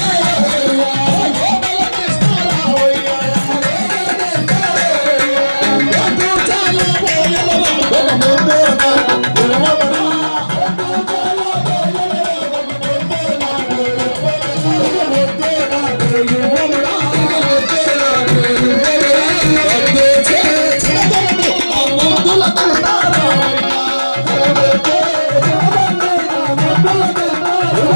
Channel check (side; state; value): both; inverted; correlation -1.00